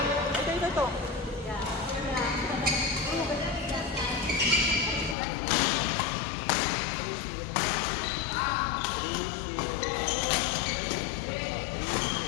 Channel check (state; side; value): drops out; right; at 5.2 s